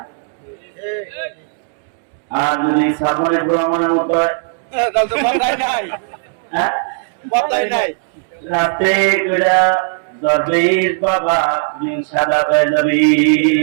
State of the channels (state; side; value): silent; left; digital silence